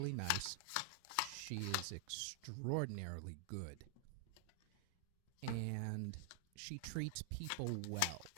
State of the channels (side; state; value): both; different; correlation 0.00